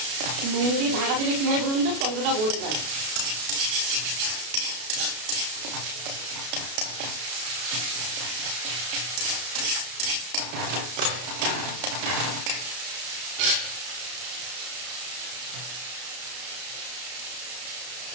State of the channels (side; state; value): left; late; 32 ms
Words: নুন দিয়ে ঢাকা দিলে কী হয় বলুন তো, টমেটোটা গলে যায়।